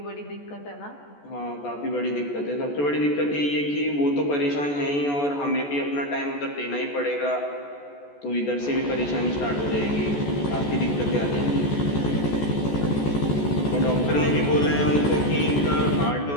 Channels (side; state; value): right; late; 14 ms